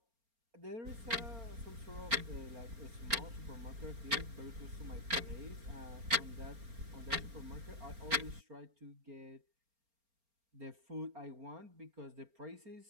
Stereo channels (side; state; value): left; late; 4.3 ms